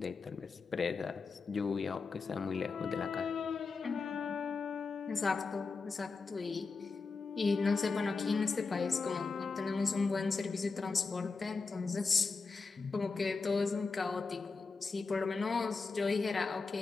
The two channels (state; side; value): quieter; right; 4.4 dB